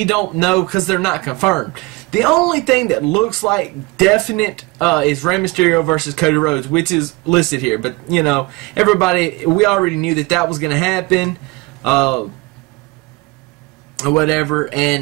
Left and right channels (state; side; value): quieter; left; 24.2 dB